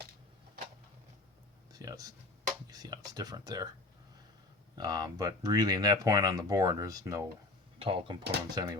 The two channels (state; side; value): quieter; right; 3.1 dB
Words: You see how it's different there. But really, in that point on the board, there's no tall components